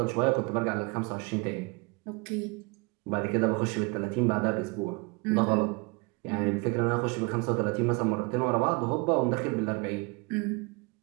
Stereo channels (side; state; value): left; quieter; 28.8 dB